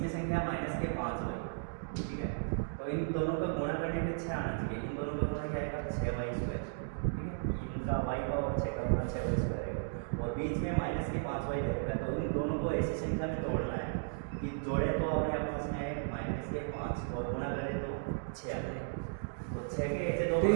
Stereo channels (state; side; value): silent; left; digital silence